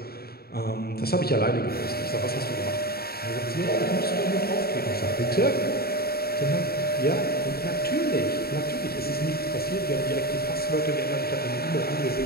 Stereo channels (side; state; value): right; late; 0.45 ms